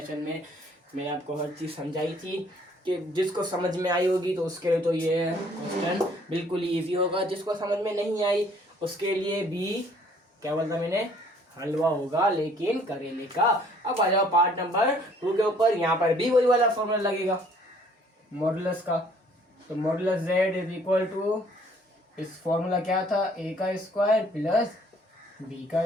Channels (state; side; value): normal; both; correlation 0.59